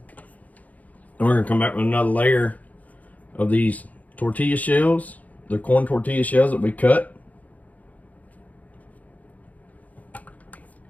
And we're going to come back with another layer of these tortilla shells, the corn tortilla shells that we cut.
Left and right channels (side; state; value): right; late; 0.075 ms